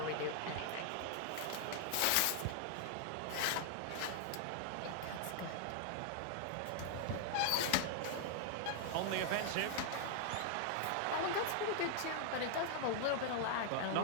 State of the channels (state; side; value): different; both; correlation 0.00